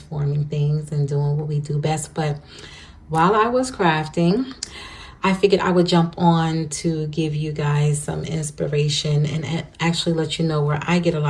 things, and doing what we do best. But while I was crafting, I figured I would jump on to give you guys some inspiration and actually let you know where I get a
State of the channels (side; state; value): both; identical; correlation 1.00